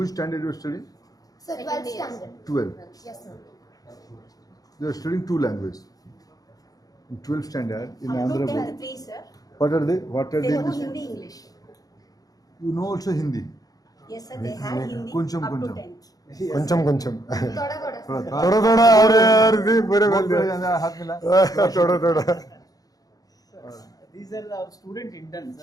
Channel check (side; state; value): right; late; 0.18 ms